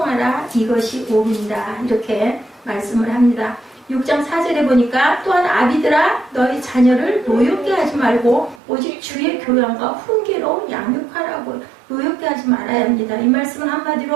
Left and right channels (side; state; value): left; drops out; at 8.6 s